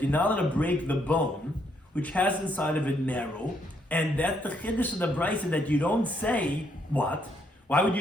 you're not allowed to break the bone, which has inside of it marrow, and that's the chiddush of the Bryce, that you don't say, what? Why would you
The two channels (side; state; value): both; normal; correlation 0.73